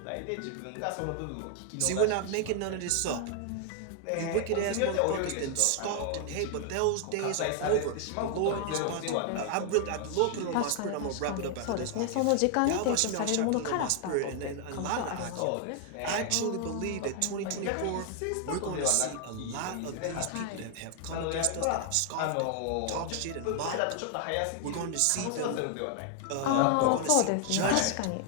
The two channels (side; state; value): both; different; correlation 0.00